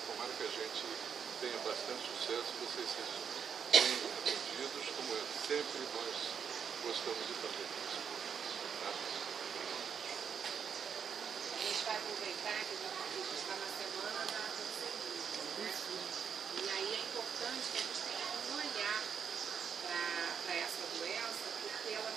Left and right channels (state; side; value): quieter; left; 7.2 dB